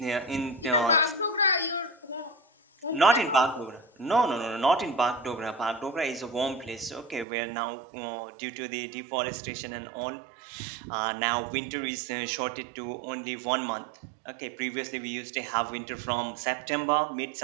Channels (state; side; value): drops out; left; at 7.2 s